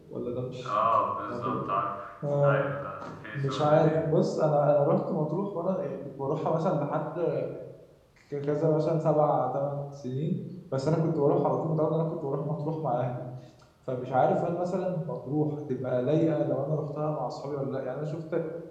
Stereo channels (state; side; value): identical; both; correlation 1.00